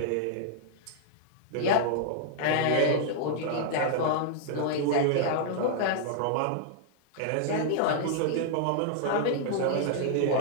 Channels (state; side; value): different; both; correlation -0.01